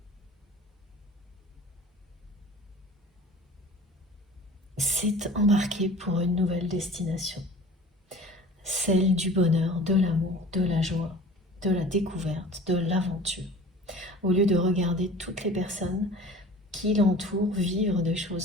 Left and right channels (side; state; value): both; normal; correlation 0.43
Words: C'est embarquer pour une nouvelle destination. Celle du bonheur, de l'amour, de la joie, de la découverte, de l'aventure. Au lieu de regarder toutes les personnes qui l'entourent vivre des